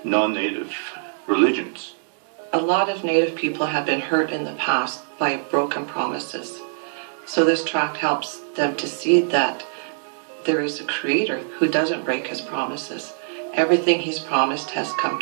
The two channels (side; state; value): left; silent; 61 dB below the other